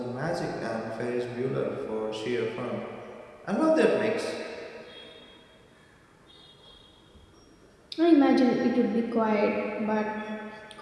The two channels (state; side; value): identical; both; correlation 1.00